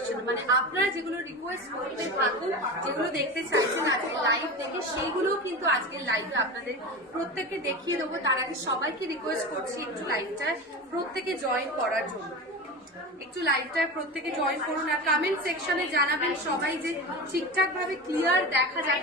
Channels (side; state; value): both; normal; correlation 0.27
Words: মানে আপনারা যেগুলো রিকোয়েস্ট করতে থাকুন, যেগুলো দেখতে চাইছেন আজকে লাইভ থেকে, সেইগুলো কিন্তু আজকের লাইভে আপনাদের প্রত্যেককে দেখিয়ে দেবো। তার আগে সবাইকে রিকোয়েস্ট করছি একটু লাইভটায় প্রত্যেকে জয়েন করার জন্য। একটু লাইভটায় প্রত্যেকে জয়েন করুন, আর কমেন্ট সেকশনে জানাবেন সবাই যে ঠিকঠাক ভাবে ক্লিয়ার দেখা